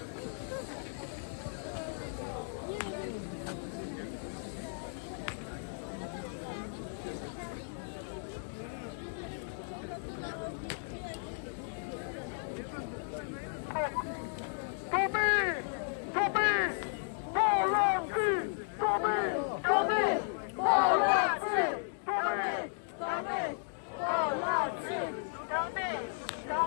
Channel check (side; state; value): right; silent; digital silence